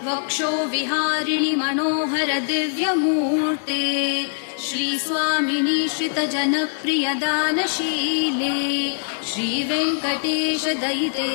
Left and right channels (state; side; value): silent; right; digital silence